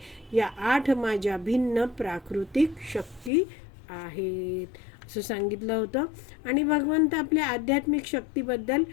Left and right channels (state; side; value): drops out; right; at 3.3 s